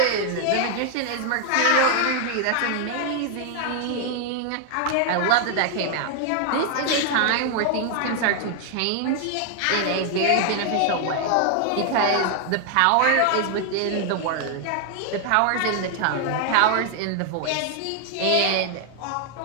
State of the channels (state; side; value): different; both; correlation 0.00